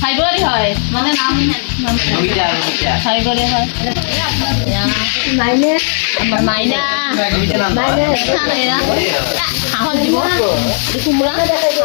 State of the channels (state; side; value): silent; right; digital silence